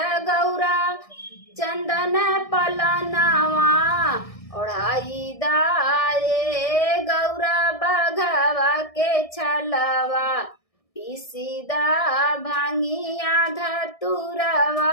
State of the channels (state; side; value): late; right; 1.6 ms